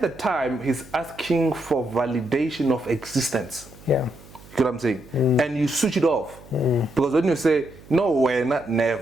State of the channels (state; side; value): noise; right; hum, 21 dB below the sound